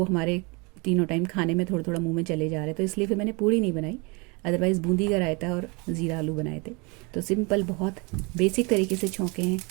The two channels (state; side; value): quieter; left; 29.2 dB